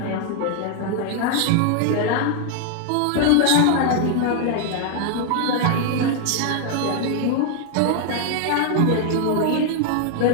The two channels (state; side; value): different; both; correlation 0.00